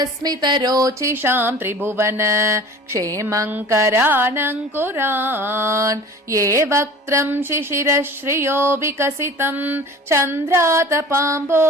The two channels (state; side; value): normal; both; correlation 0.41